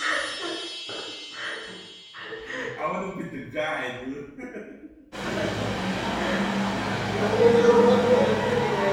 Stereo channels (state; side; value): identical; both; correlation 1.00